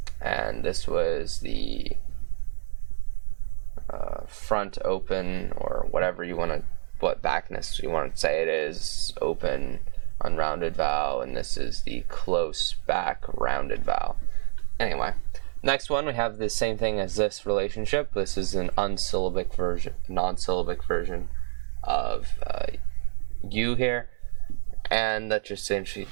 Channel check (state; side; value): silent; left; digital silence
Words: and this was the front open, or whatever you want to, what backness you want to say it is, open unrounded vowel, and this is the close back rounded vowel. Anyway, next one we have the same thing as this relationship. This is an unsyllabic version, non-syllabic version of you here, and that just essentially,